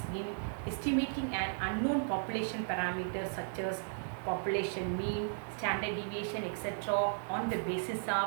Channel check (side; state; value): left; silent; digital silence